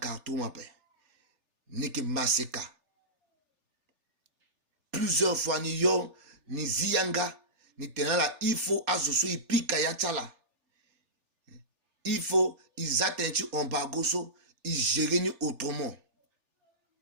ape ni ki maseka plusieurs fois ni yo ni ziyanga ni tenala il faut azoso ipika ya chala il faut ils atteignent embargo so ils gèrent autrement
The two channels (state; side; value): late; left; 3.4 ms